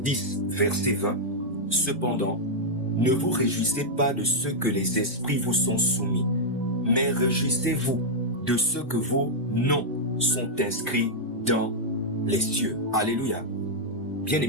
verset 20, « Cependant, ne vous réjouissez pas de ce que les esprits vous sont soumis, mais réjouissez-vous de ce que vos noms sont inscrits dans les cieux. » Alléluia.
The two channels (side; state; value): both; normal; correlation -0.05